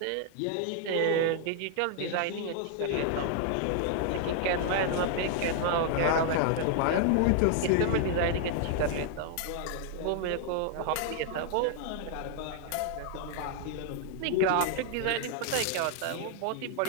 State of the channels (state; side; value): different; both; correlation 0.00